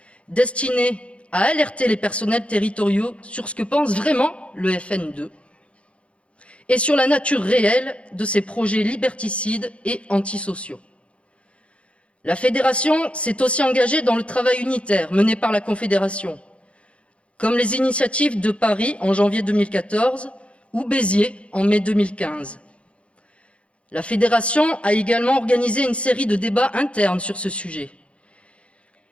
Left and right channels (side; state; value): right; late; 0.061 ms